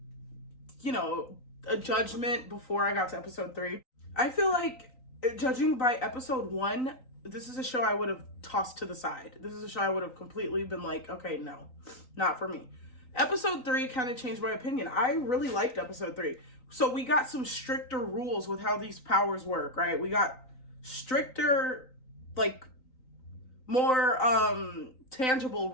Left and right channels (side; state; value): right; late; 3.9 ms